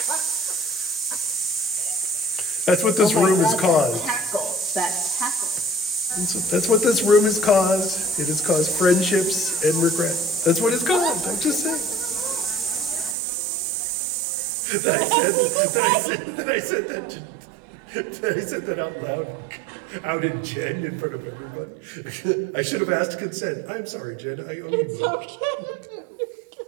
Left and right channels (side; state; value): left; drops out; at 13.2 s